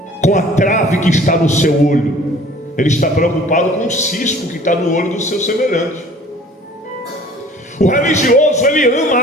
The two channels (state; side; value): normal; both; correlation 0.49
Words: com a trave que está no seu olho. Ele está preocupado com o cisco que está no olho do seu semelhante. O religioso, ele